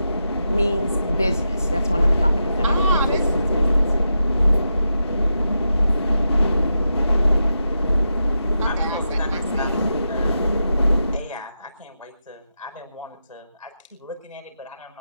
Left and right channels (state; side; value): inverted; both; correlation -0.87